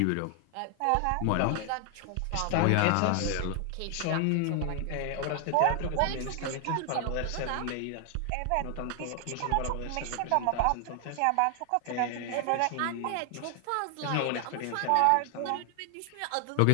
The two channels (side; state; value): both; different; correlation 0.00